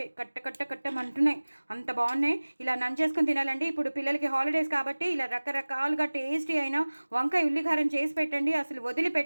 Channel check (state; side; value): inverted; both; correlation -1.00